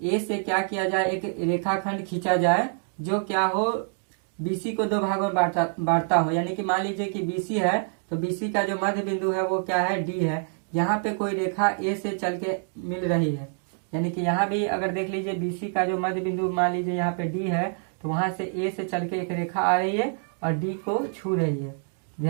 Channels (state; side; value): silent; left; 61 dB below the other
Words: से क्या किया जाए, एक रेखाखंड खींचा जाए जो क्या हो, बीसी को दो भागों में बांटता हो। यानी कि मान लीजिए कि बीसी है तो बीसी का जो मध्य बिंदु है वो क्या है, डी है। यहाँ पे कोई रेखा ए से चल के मिल रही है, यानी कि यहाँ भी अगर देख लीजिए बीसी का जो मध्य बिंदु मान लीजिए यहाँ पे डी है, तो वहां से ए से चल के एक रेखा आ रही है और डी को छू रही है।